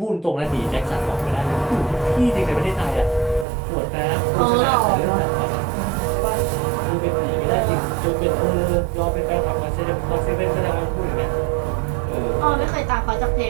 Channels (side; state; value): left; drops out; at 3.5 s